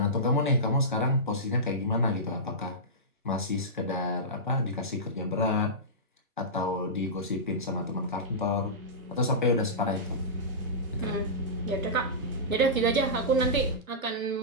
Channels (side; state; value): both; normal; correlation -0.17